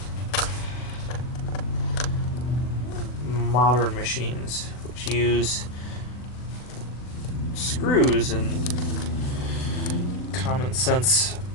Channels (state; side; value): late; right; 39 ms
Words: modern machines, which use screws and common sense